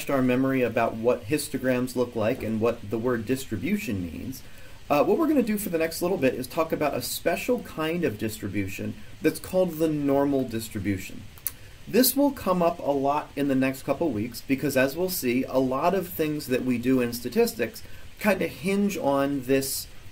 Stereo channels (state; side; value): identical; both; correlation 1.00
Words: our memory about what histograms look like and what the word distribution means, what we're going to do for the next little bit is talk about a special kind of distribution that's called the normal distribution. This will come up a lot in the next couple weeks because, as we'll see, a lot of things that we do in statistics kind of hinge on this